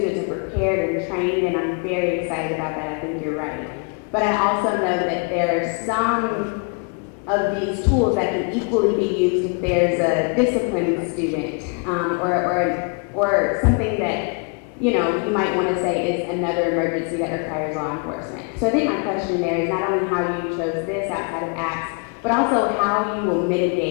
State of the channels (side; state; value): right; quieter; 36.8 dB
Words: are prepared and trained, and I'm very excited about that. I think you're right. But I also know that there are some of these tools that can equally be used if there's a disciplined student or something that you might want to say is another emergency that requires law enforcement. So I think my question there is not only how you chose this outside of apps, but also how you will